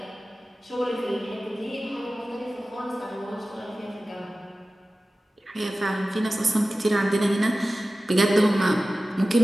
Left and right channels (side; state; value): both; normal; correlation 0.96